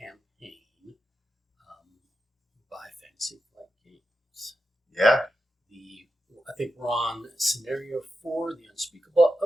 by Fantasy Flight Games? Yeah. I think we're on scenario 4, the Unspeakable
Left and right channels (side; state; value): both; normal; correlation 0.89